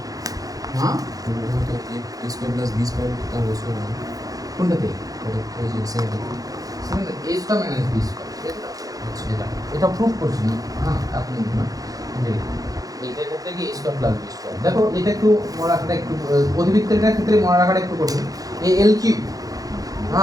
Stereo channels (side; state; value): left; late; 0.17 ms